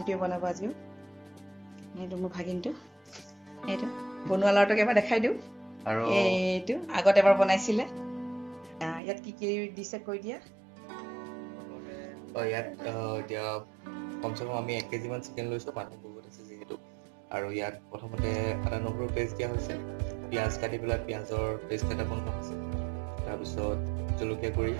বনাব আজিও। এইটো মোৰ ভাগিনটো। এইটো বনোৱা লৰাটোক এবাৰ দেখাই দিওঁ। আৰু এইটো আগত এবাৰ বনাইছিলে। ইয়াত কি দিছে কৈ দিয়া। ইয়াত এতিয়া কমচে কম আমি 1 কেজি মান চিকেন লৈছোঁ, মানুহ বহুত আছে যিহেতু। আৰু ইয়াত প্ৰথমতে আদা নহৰু পেষ্ট দিয়া হৈছে, পিঁয়াজ কাটি পেলাই পিঁয়াজৰ পেষ্ট এটা বনোৱা হৈছে, তাৰপিছত জলকীয়া গুড়ি,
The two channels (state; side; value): drops out; left; at 9.0 s